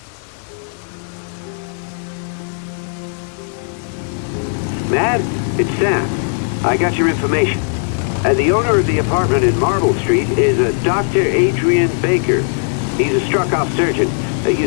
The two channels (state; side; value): silent; right; digital silence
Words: Mad, it's Sam. I got your information. The owner of the apartment in Marble Street is a Dr. Adrian Baker. He's a struck-off surgeon. He